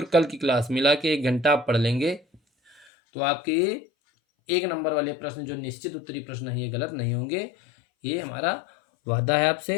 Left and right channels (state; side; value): drops out; right; at 2.9 s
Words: कल की क्लास मिला के 1 घंटा आप पढ़ लेंगे तो आपके 1 नंबर वाले प्रश्न जो निश्चित उत्तरी प्रश्न है ये गलत नहीं होंगे, ये हमारा वादा है